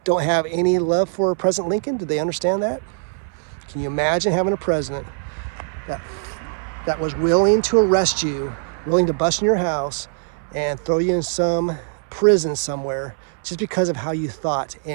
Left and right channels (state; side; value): silent; left; 62 dB below the other